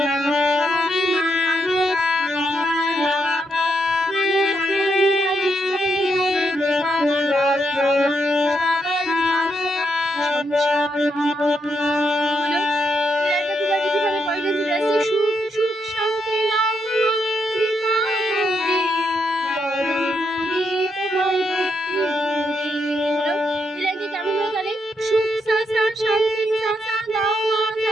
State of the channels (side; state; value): both; normal; correlation 0.80